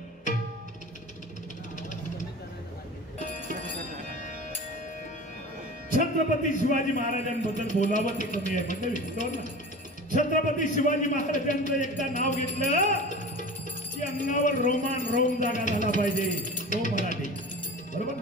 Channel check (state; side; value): normal; both; correlation 0.36